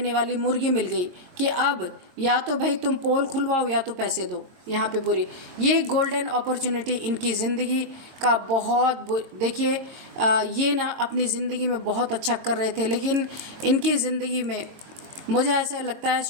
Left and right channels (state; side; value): late; left; 22 ms